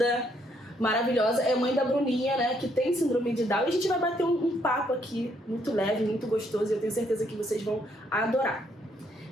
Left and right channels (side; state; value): both; normal; correlation 0.71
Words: maravilhosa, é mãe da Bruninha, né, que tem síndrome de Down. E a gente vai bater um papo aqui muito leve, muito gostoso e eu tenho certeza que vocês vão adorar.